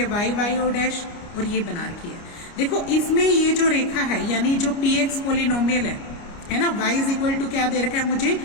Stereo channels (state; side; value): late; right; 29 ms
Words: वाई वाई ओ डैश, और ये बना रखी है। देखो इसमें ये जो रेखा है, यानी जो पी एक्स पोलिनोमियल है ना, y इज इक्वल टू क्या दे रखा है मुझे,